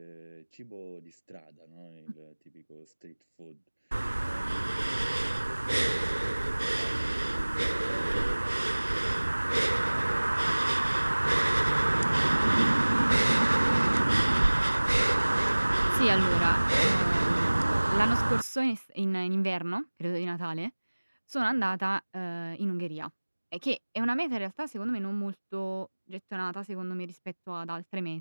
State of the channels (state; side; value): inverted; both; correlation -1.00